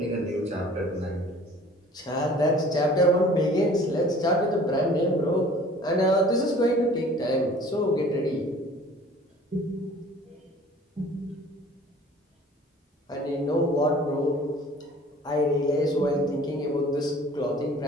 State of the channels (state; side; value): normal; both; correlation 0.49